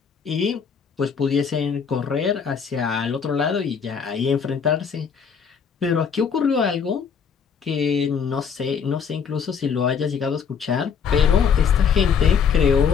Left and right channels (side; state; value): right; quieter; 6.7 dB